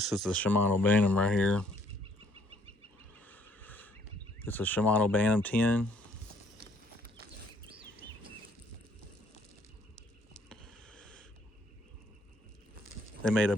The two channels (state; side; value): normal; both; correlation 0.64